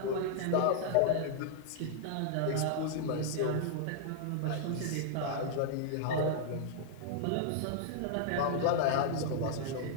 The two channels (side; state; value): both; different; correlation -0.01